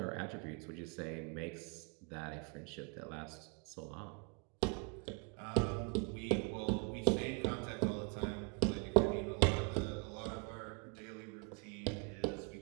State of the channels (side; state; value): left; quieter; 35.2 dB